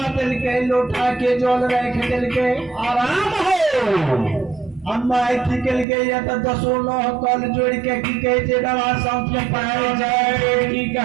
दिल के, लोटा के जल रख दिल के आराम हो। अम्मा निकल गई है तो दसो नौ कल जोड़ के की कहे थे बाबा संत में पाए जाए की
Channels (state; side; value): drops out; left; at 5.9 s